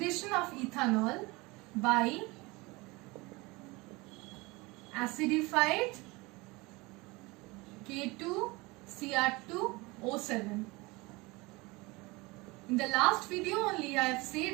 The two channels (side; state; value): left; quieter; 23.9 dB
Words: of ethanol by acidified K2Cr2O7. In the last video only I have